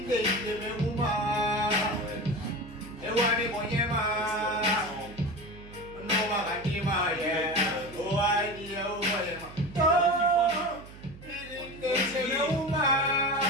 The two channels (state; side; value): noise; right; hum, 18 dB below the sound